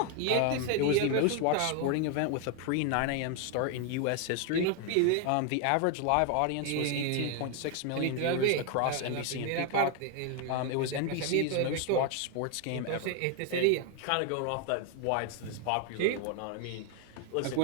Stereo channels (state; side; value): different; both; correlation 0.01